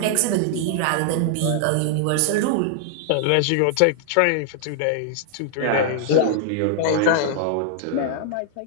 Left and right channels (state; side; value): different; both; correlation -0.01